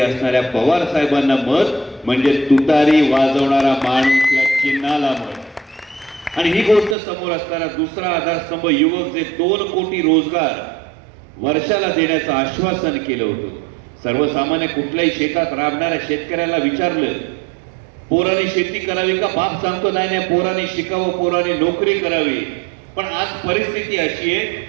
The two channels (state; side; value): drops out; left; at 7.0 s